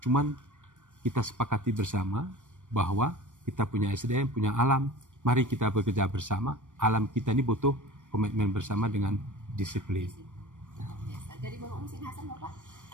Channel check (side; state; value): left; late; 0.86 ms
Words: Cuman kita sepakati bersama bahwa kita punya SDM, punya alam. Mari kita bekerja bersama. Alam kita ini butuh komitmen bersama dengan disiplin. Dari Bapak Muhsin Hasan, Bapak,